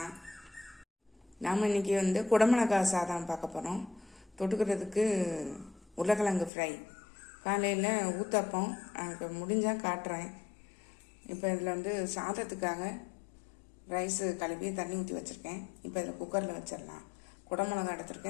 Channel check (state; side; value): drops out; right; at 6.5 s